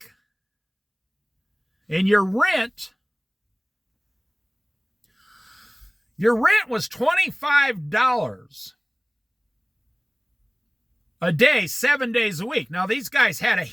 and your rent, Your rent was $25 a day, 7 days a week. Now, these guys had a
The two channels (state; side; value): identical; both; correlation 1.00